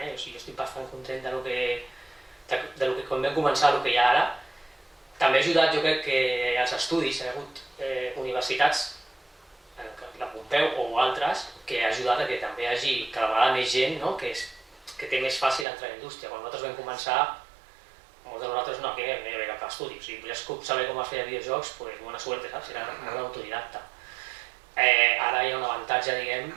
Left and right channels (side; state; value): left; drops out; at 15.7 s